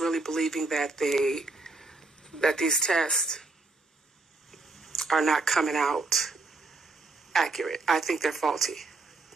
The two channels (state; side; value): quieter; left; 3.4 dB